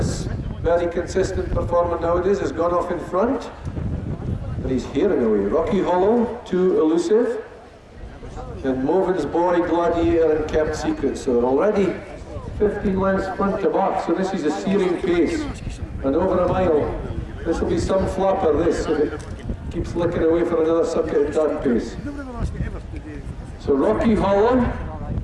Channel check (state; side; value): identical; both; correlation 1.00